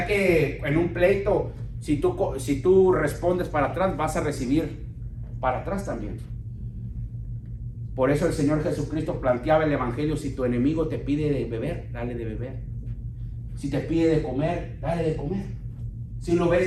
que en un pleito, si tú respondes para atrás, vas a recibir para atrás también? Por eso el Señor Jesucristo planteaba el Evangelio: si tu enemigo te pide de beber, dale de beber. Si te pide de comer, dale de comer. Si lo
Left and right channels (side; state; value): both; identical; correlation 1.00